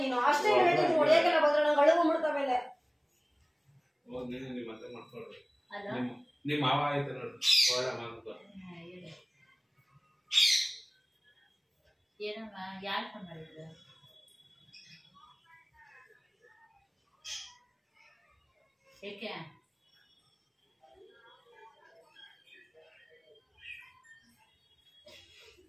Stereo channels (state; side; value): identical; both; correlation 1.00